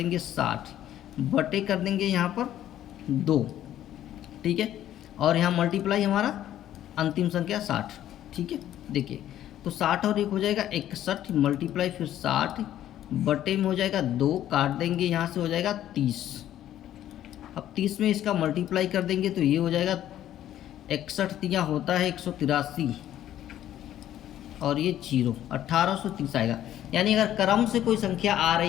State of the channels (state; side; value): quieter; right; 12.0 dB